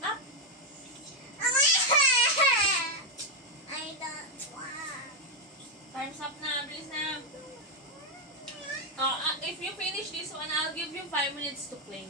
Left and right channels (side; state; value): both; normal; correlation 0.02